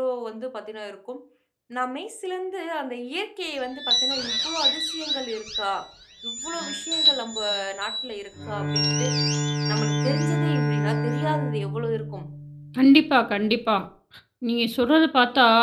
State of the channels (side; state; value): both; identical; correlation 1.00